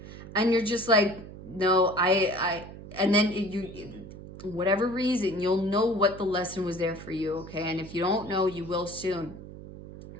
And you're just like, no, and then whatever reason, you'll know what the lesson was there for you, okay? And if you don't know, you will soon.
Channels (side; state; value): right; noise; hum, 14 dB below the sound